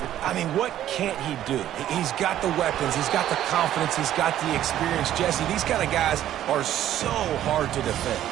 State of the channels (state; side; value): quieter; left; 12.1 dB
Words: I mean, what can't he do? He's got the weapons, he's got the confidence, he's got the experience. Jesse, these kind of guys are so hard to